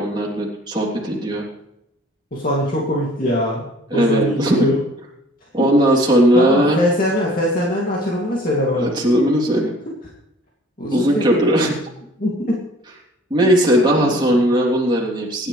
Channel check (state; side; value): normal; both; correlation 0.53